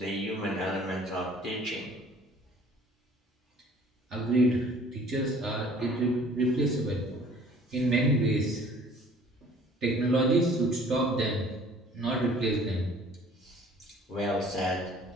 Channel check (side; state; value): both; normal; correlation 0.52